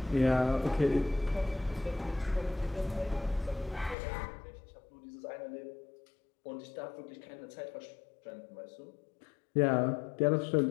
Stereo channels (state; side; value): drops out; right; at 4.0 s